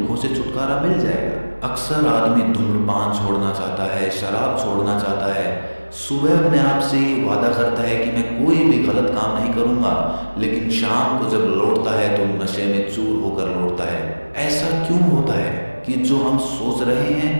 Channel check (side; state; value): both; inverted; correlation -1.00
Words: से छुटकारा मिल जाएगा। अक्सर आदमी धूम्रपान छोड़ना चाहता है, शराब छोड़ना चाहता है, सुबह अपने आप से ये वादा करता है कि मैं कोई भी गलत काम नहीं करूंगा, लेकिन शाम को जब लौटता है तो नशे में चूर होकर लौटता है। ऐसा क्यों होता है कि जो हम सोच रहे हैं